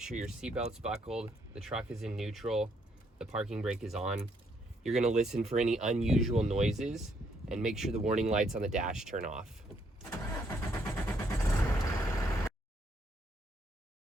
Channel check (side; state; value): both; normal; correlation 0.72